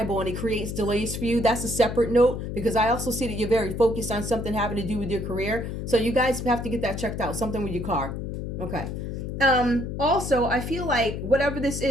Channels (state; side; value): noise; left; hum, 5 dB below the sound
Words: and it creates delays for you. That's a separate note, because I also see that you're very focused on something having to do with your career. So you guys have to get that checked out. Something with your car. Okay. Also, I feel like whatever this